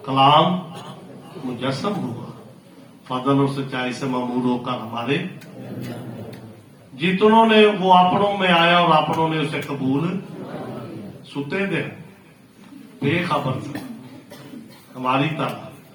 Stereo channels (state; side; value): identical; both; correlation 1.00